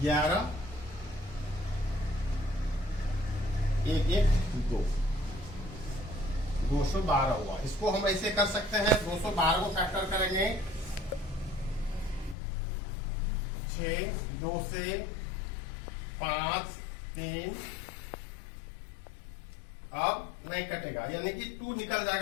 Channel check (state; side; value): drops out; right; at 12.4 s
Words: 11 1 1 2 212 हुआ। इसको हम ऐसे कर सकते हैं, 212 को फैक्टर करेंगे 6 2 से 5 3, अब नहीं कटेगा यानी कि 2 निकल